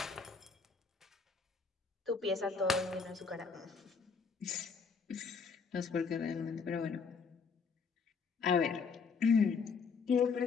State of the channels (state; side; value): quieter; right; 5.3 dB